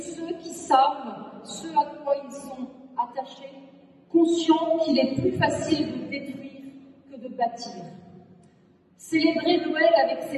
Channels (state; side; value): identical; both; correlation 1.00